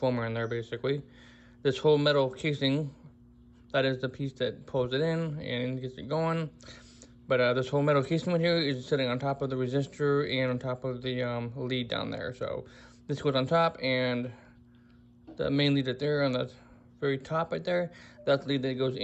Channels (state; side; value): identical; both; correlation 1.00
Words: in there, basically. This whole metal casing, that is the piece that pulls it in and gets it going. But this whole metal casing right here is sitting on top of the resistor and on top of the lead down there. So this goes on top, and the main lead right there on the very top right there, that's the lead that goes